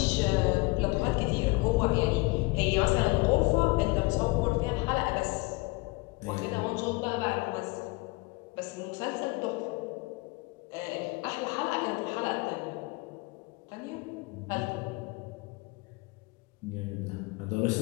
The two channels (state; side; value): quieter; right; 25.1 dB